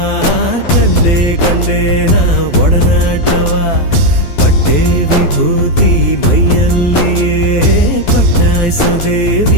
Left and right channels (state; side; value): late; right; 12 ms